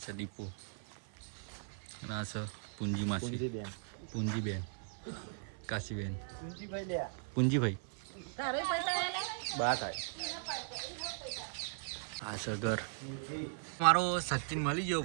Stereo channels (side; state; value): left; silent; 52 dB below the other